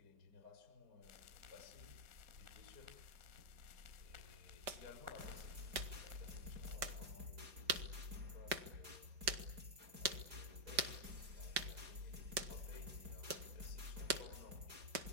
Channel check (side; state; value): left; late; 5.1 ms